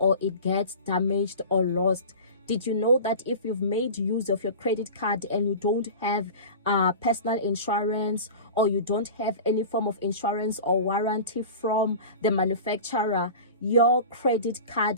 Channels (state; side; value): inverted; both; correlation -0.34